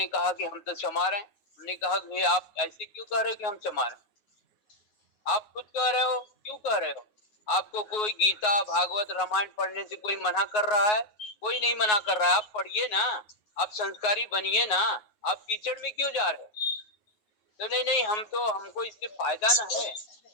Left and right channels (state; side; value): late; right; 9.5 ms